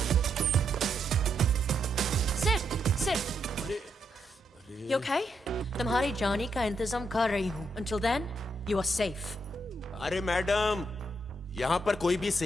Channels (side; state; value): both; normal; correlation 0.79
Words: You okay? तुम्हारी जाने का इंतजाम कर रही हूँ। Until then, you are safe. अरे मैडम, यहाँ पर कोई भी